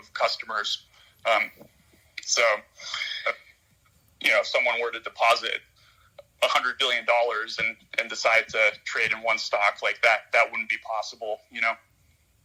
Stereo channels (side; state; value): both; identical; correlation 1.00